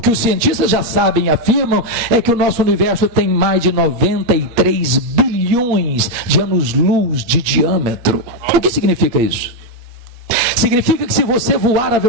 os cientistas já sabem e afirmam é que o nosso universo tem mais de 93 bilhões bilhões de anos-luz de diâmetro. O que significa isso? Significa que se você voar à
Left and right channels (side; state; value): left; late; 8.5 ms